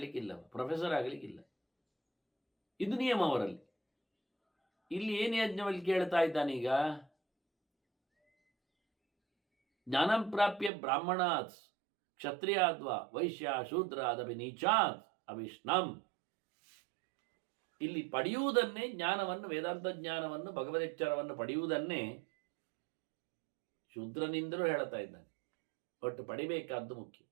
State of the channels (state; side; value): drops out; left; at 10.7 s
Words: ಪ್ರೊಫೆಸರ್ ಆಗಲಿಕ್ಕಿಲ್ಲ. ಇದು ನಿಯಮ ಅವರಲ್ಲಿ. ಇಲ್ಲಿ ಏನು ಯಾಜ್ಞವಲ್ಲಿ ಕೇಳ್ತಾ ಇದ್ದಾನೀಗ, ಜ್ಞಾನಂ ಪ್ರಾಪ್ಯ ಬ್ರಾಹ್ಮಣಾತ್ ಕ್ಷತ್ರಿಯಾದ್ವಾ ವೈಶ್ಯ ಶೂದ್ರ ಅದಪಿ ನೀಚಾತ್ ಅವಿಷ್ಣಂ. ಇಲ್ಲಿ ಪಡೆಯುವುದನ್ನೇ, ಜ್ಞಾನವನ್ನು, ವೇದಾಂತ ಜ್ಞಾನವನ್ನು, ಭಗವದೆಚ್ಚರವನ್ನು ಪಡೆಯುವುದನ್ನೇ ಶೂದ್ರನಿಂದಲೂ ಹೇಳ್ತಾ ಇದ್ದಾನೆ. ಒಟ್ಟು ಪಡಿಬೇಕಾದ್ದು ಮುಖ್ಯ.